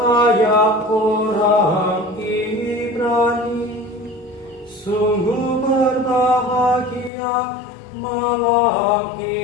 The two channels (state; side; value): drops out; right; at 7.1 s